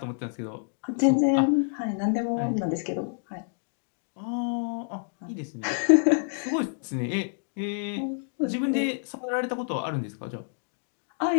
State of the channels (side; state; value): right; silent; digital silence